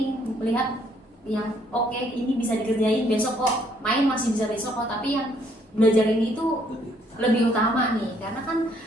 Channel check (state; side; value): normal; both; correlation 0.67